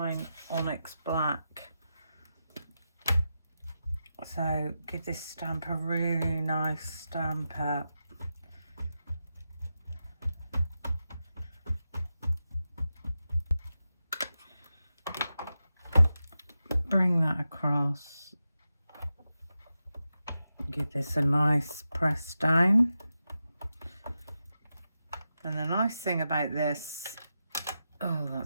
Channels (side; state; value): both; inverted; correlation -0.90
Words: onyx black? So give this stamp a really nice stamp up. Bring that across. Give this a nice press down. And the nice thing about this, oh,